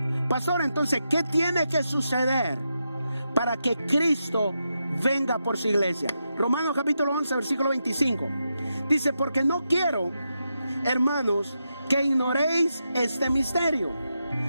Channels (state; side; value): inverted; both; correlation -0.86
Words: Pastor, entonces, ¿qué tiene que suceder para que Cristo venga por su iglesia? Romanos capítulo 11, versículo 25. Dice: porque no quiero, hermanos, que ignoréis este misterio,